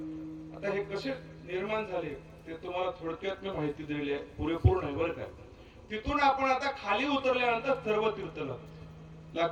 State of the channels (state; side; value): identical; both; correlation 1.00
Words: आता हे कसे निर्माण झाले ते तुम्हाला थोडक्यात मी माहिती दिली आहे, पुरेपूर नाही बरं काय. तिथून आपण आता खाली उतरल्यानंतर सर्व तीर्थ